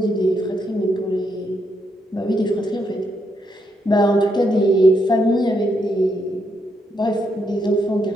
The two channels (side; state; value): both; normal; correlation 0.79